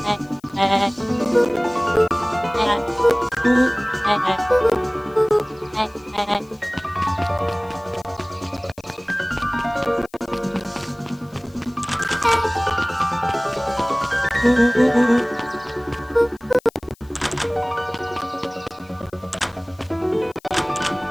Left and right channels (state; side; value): noise; left; hiss, 30 dB below the sound